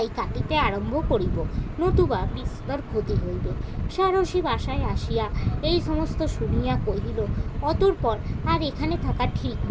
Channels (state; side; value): identical; both; correlation 1.00